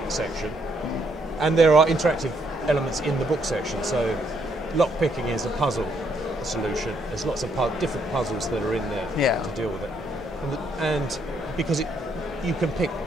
section, and there are interactive elements in the book section. So, lockpicking is a puzzle solution. There's lots of different puzzles that are in there to deal with it, and because you can pick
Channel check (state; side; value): normal; both; correlation 0.73